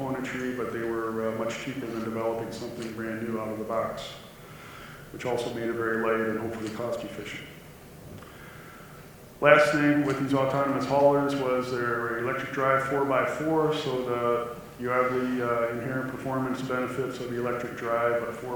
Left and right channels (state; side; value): identical; both; correlation 1.00